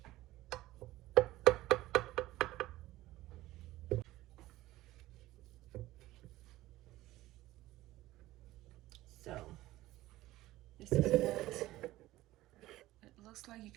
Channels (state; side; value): quieter; left; 16.7 dB